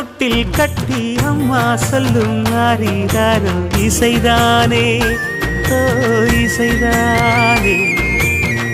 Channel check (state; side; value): identical; both; correlation 1.00